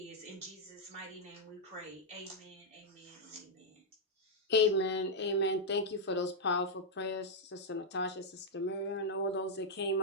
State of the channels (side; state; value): both; normal; correlation -0.04